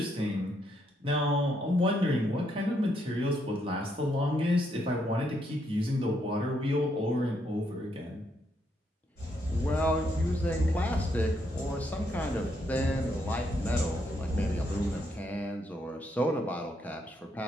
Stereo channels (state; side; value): normal; both; correlation 0.76